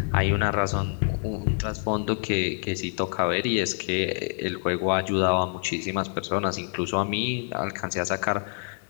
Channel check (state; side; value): silent; right; 57 dB below the other